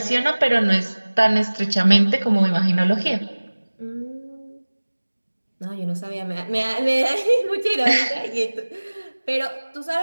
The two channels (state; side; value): inverted; both; correlation -1.00